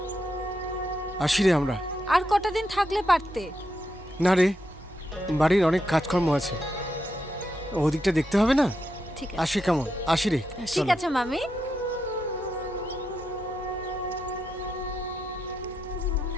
আসি রে আমরা। আর কটা দিন থাকলে পারতে। না রে, বাড়ির অনেক কাজকর্ম আছে, ওদিকটা দেখতে হবে না? ঠিক আসি কেমন? আসি রে। ঠিক চলো। আছে মামি।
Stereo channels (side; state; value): both; normal; correlation 0.84